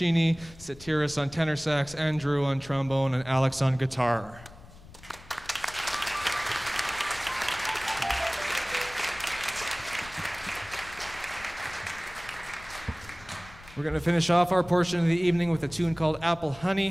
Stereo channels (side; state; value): left; noise; rumble, 20 dB below the sound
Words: Satiris on tenor sax, Andrew on trombone, and Alex on guitar. We're going to finish off our portion of the evening with a tune called Apple